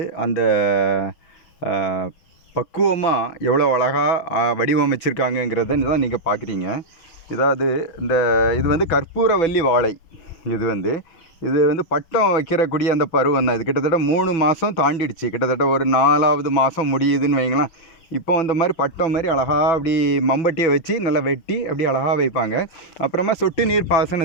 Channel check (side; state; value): right; late; 6.1 ms